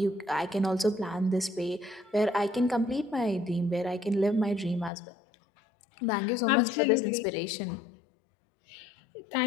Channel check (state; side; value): drops out; right; at 4.9 s